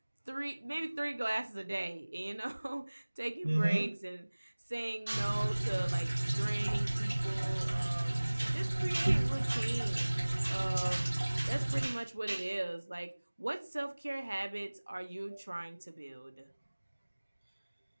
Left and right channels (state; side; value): inverted; both; correlation -1.00